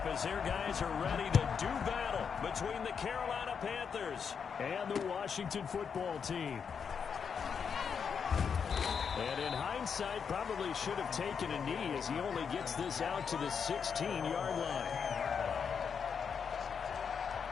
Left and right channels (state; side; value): quieter; right; 6.6 dB